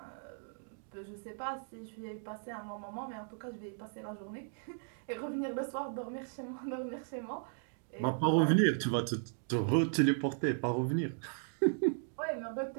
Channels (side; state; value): left; silent; digital silence